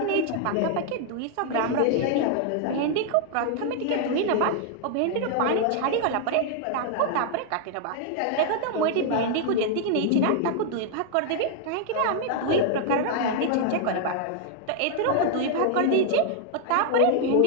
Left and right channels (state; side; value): different; both; correlation 0.00